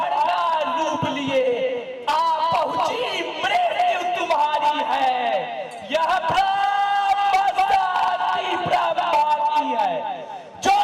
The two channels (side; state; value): both; identical; correlation 1.00